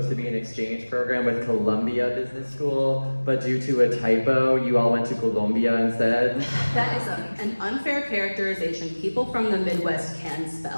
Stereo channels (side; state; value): both; inverted; correlation -1.00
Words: to be an exchange program with Columbia Business School, but due to a typo, you all went to Columbia instead? That is an unfair characterization people from the Midwest can